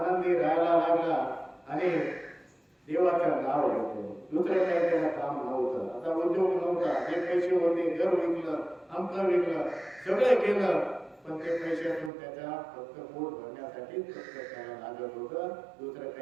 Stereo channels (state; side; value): drops out; left; at 12.1 s